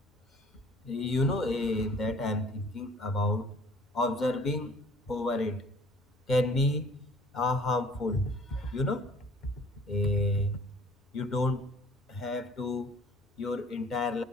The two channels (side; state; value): both; normal; correlation 0.53